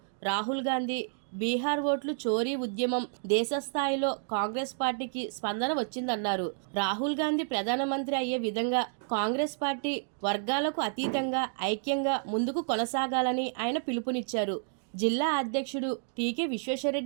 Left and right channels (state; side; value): silent; left; digital silence